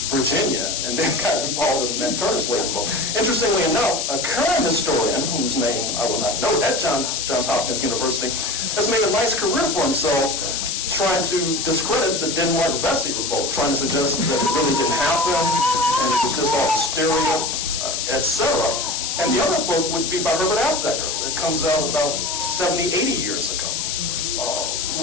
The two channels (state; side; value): noise; left; hiss, 1 dB below the sound